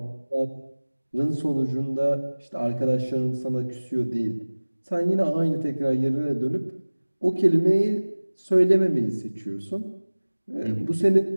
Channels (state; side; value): inverted; both; correlation -1.00